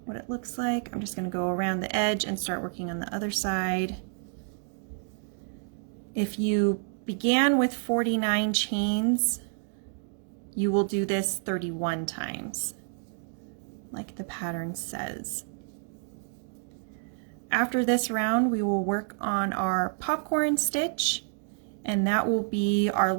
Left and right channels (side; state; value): left; silent; 56 dB below the other